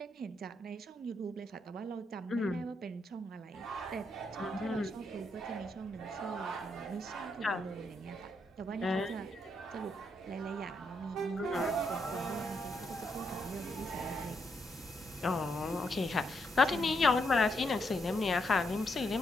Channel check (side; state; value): both; normal; correlation 0.78